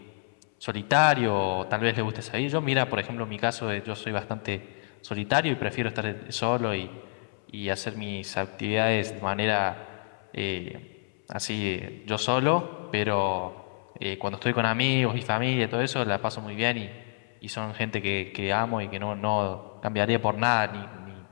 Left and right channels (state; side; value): silent; right; 59 dB below the other